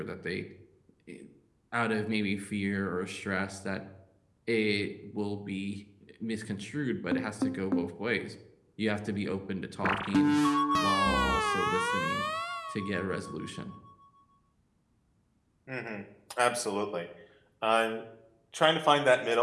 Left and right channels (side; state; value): both; identical; correlation 1.00